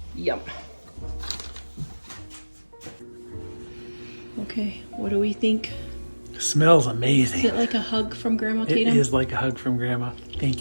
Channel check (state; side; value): inverted; both; correlation -1.00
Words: Yum. Okay, what do we think? It smells amazing. Is it like a hug from Grandma It Tatum? is like a hug from Grandma. Thank